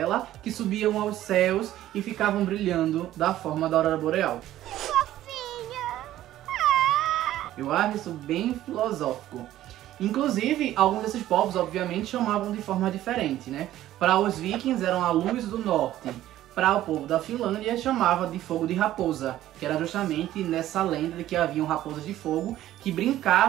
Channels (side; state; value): left; quieter; 13.6 dB